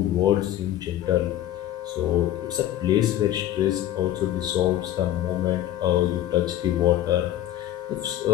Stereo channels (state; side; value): quieter; right; 13.0 dB